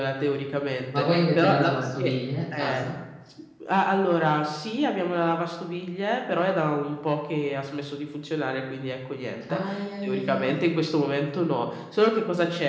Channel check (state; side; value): identical; both; correlation 1.00